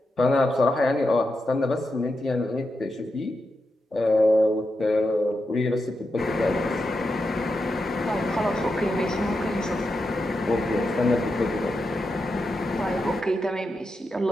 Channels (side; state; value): both; normal; correlation 0.87